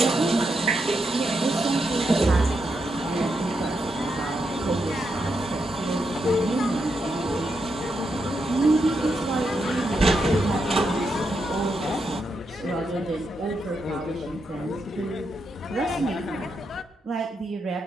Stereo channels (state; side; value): normal; both; correlation 0.83